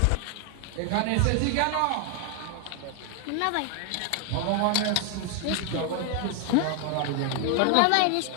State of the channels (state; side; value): different; both; correlation 0.00